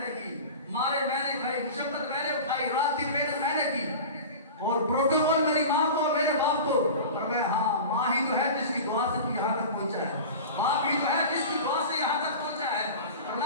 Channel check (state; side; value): inverted; both; correlation -0.33